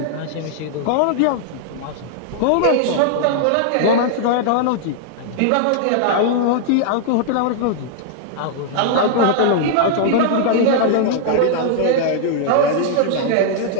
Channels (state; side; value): different; both; correlation -0.01